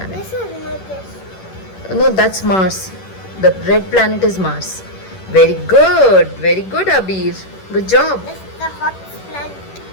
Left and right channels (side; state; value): right; late; 11 ms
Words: This is not this. No, that's Mars. The red planet is Mars. Very good, Abir. Good job. This is the hottest planet.